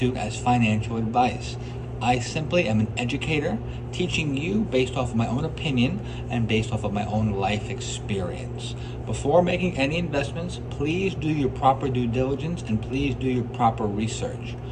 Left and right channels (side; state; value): both; identical; correlation 1.00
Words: as financial advice. I simply am an educator, teaching you based off of my own opinion and based off of my own life experience. Before making any investments, please do your proper due diligence and please do your proper research.